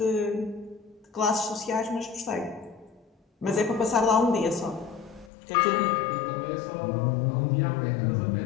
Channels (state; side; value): drops out; right; at 5.3 s